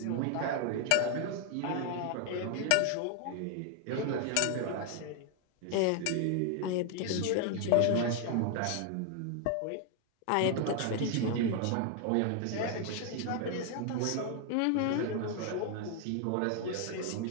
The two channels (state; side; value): different; both; correlation 0.00